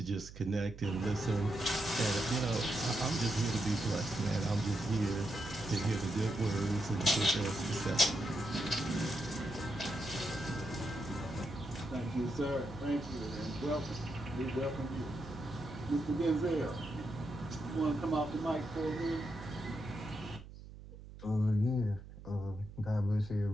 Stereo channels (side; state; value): right; noise; hum, 15 dB below the sound